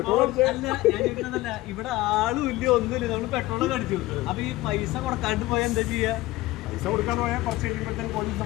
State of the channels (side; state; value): right; quieter; 18.2 dB